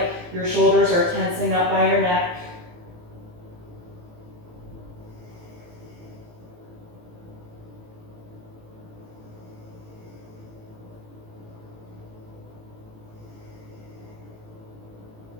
your shoulders are tensing up by your neck.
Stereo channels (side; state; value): left; late; 18 ms